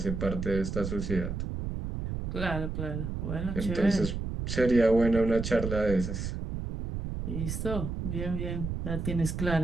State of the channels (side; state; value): right; noise; rumble, 4 dB below the sound